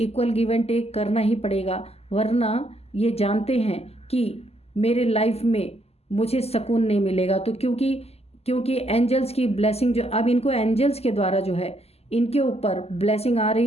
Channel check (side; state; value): right; late; 0.29 ms